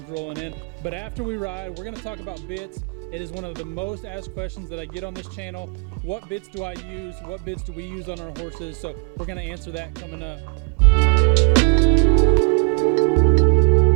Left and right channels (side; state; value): left; quieter; 38.5 dB